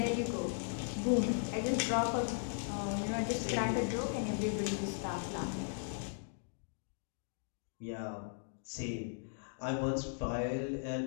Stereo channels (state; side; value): silent; right; digital silence